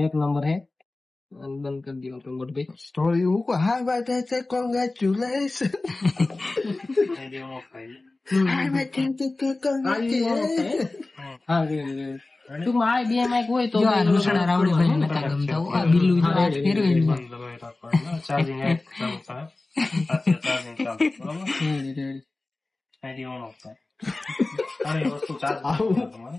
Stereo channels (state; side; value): quieter; right; 3.1 dB